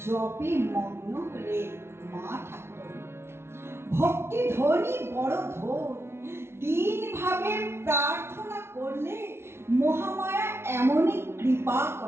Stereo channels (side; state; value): left; late; 0.12 ms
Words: জপে মগ্ন হলে মা ঠাকুর। ভক্তি ধ্বনি বড় ধর, দিন ভাবে প্রার্থনা করলে মহামায়া এমনই কৃপা